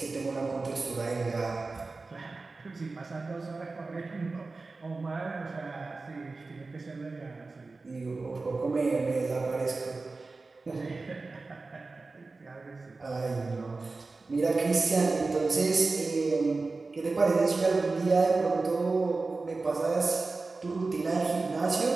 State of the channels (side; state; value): left; quieter; 3.7 dB